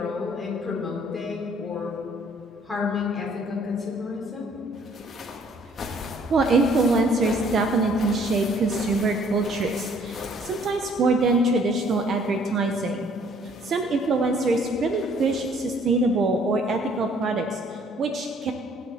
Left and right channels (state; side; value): normal; both; correlation 0.60